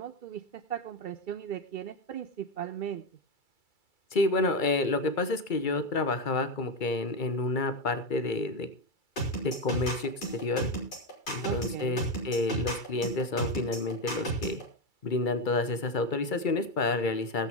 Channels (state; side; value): late; right; 2.3 ms